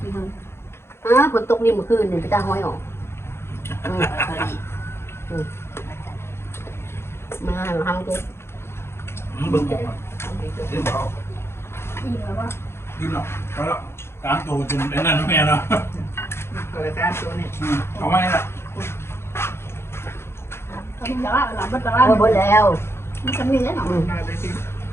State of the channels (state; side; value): late; right; 0.12 ms